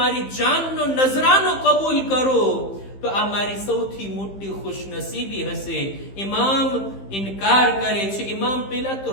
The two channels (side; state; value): right; late; 15 ms